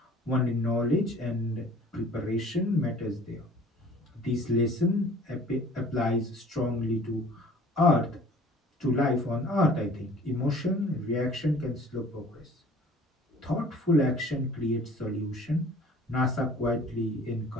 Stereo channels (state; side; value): normal; both; correlation 0.49